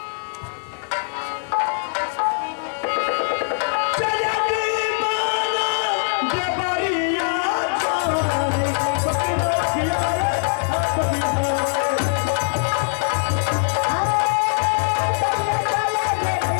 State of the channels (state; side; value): silent; right; digital silence